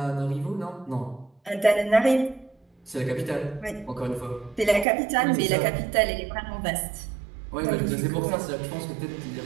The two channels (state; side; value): drops out; left; at 4.9 s